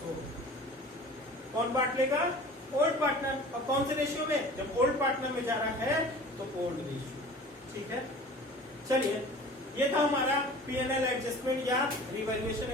हो। कौन बांट लेगा, ओल्ड पार्टनर। और कौन से रेशियो में, जब ओल्ड पार्टनर में जा रहा है तो ओल्ड रेशियो। ठीक है, चलिए ये था हमारा P&L एडजस्टमेंट या रिवैल्यूएशन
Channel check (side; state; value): both; normal; correlation 0.42